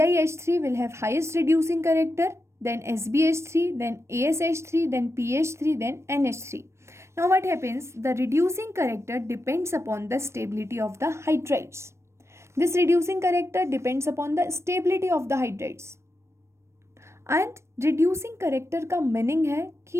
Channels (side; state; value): left; late; 0.13 ms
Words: will have highest reducing character, then SbH3, then ASH3, then PH3, then NH3. Now what happens? The reducing character depends upon the stability of the hydrides. This reducing character depends upon the stability of the hydrides. And reducing character का meaning है